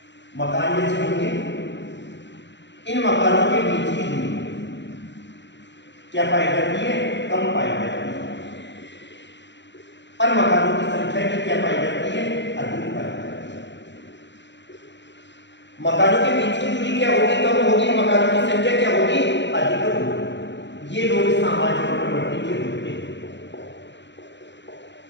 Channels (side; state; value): right; late; 0.52 ms